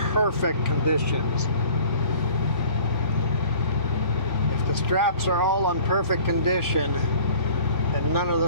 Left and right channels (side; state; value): left; late; 3.5 ms